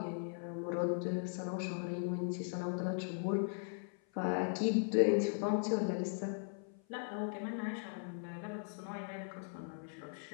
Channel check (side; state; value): right; silent; 52 dB below the other